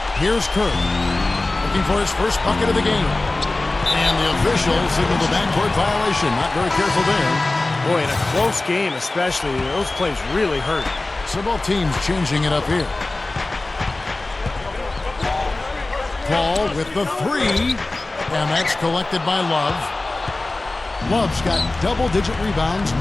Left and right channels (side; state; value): right; quieter; 3.0 dB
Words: Here's Kerr. Looking for his first bucket of the game. And the official signaled a backcourt violation. Not very careful there. Boy, in a close game especially, those plays really hurt. So both teams changing it up here. Paul with the 3. And that's collected by Love. Love's got double-digit rebounds